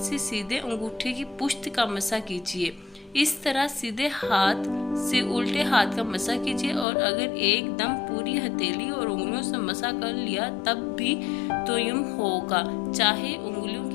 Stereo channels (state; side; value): drops out; right; at 6.9 s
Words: सीधे अंगूठे की पुश्त का मसा कीजिए। इस तरह सीधे हाथ से उल्टे हाथ का मसा कीजिए और अगर एकदम पूरी हथेली और उंगलियों से मसा कर लिया तब भी तयम्मुम होगा, चाहे उंगलियों